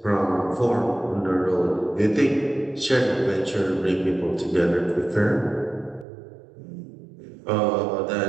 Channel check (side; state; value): left; drops out; at 6.1 s